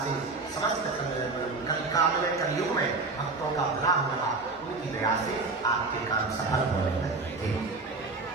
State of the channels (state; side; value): quieter; left; 3.7 dB